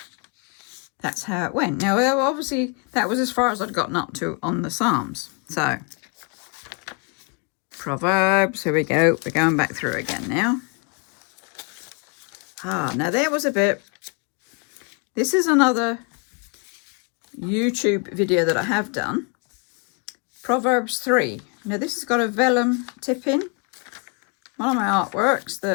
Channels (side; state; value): right; quieter; 32.1 dB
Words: that's how it went. Now, obviously, that was as far as I'd gotten up to on the Psalms. So, Proverbs, here we go. We're going back through again now. Now there was a bit. This is another YouTube video that I have done. Proverbs 3. Now this has got a vellum tip in. one of my artworks